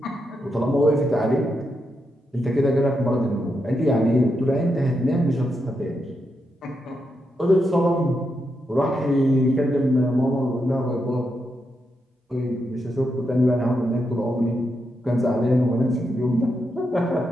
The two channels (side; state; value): both; normal; correlation 0.84